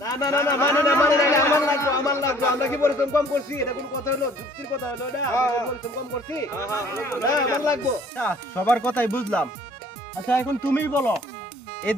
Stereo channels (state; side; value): normal; both; correlation 0.55